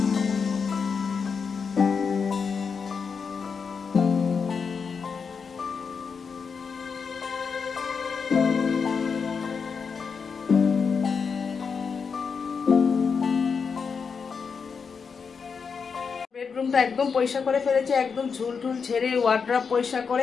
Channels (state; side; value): quieter; right; 5.7 dB